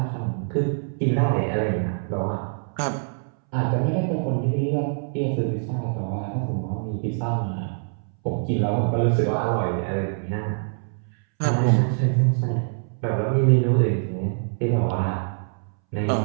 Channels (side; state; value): left; silent; 62 dB below the other